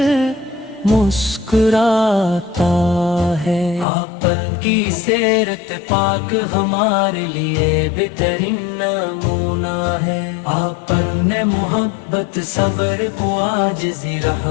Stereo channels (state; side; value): drops out; right; at 3.9 s